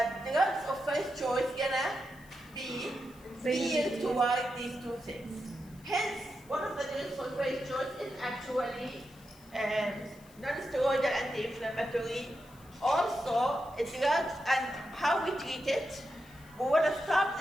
drugs of first choice gonna be geared toward these two things. Hence, one of the drugs for first choice is actually non-steroidal anti-inflammatory. Also, a drug, and how we treat it. We want to stop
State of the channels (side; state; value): left; noise; hiss, 26 dB below the sound